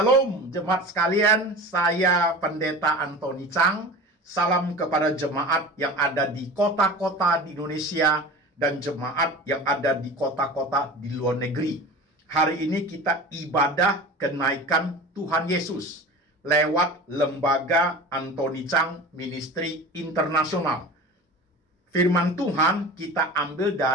jemaat sekalian, saya Pendeta Antoni Chang. Salam kepada jemaat yang ada di kota-kota di Indonesia dan jemaat yang ada di kota-kota di luar negeri. Hari ini kita ibadah kenaikan Tuhan Yesus lewat lembaga Antoni Chang Ministry Internasional. Firman Tuhan kita ambil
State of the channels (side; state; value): both; normal; correlation 0.35